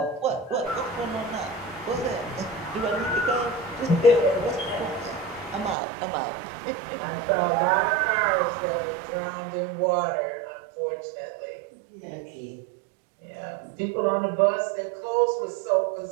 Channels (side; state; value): left; drops out; at 5.8 s